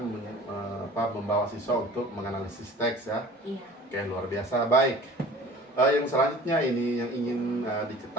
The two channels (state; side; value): normal; both; correlation 0.44